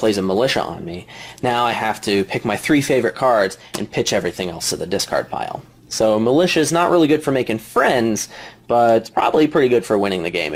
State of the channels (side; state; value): both; identical; correlation 1.00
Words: a Militia on me, now I have to pick my 3 favorite cards and pitch everything else to the discard pile. So Militia is not really good for making friends, but it's probably pretty good for winning the game,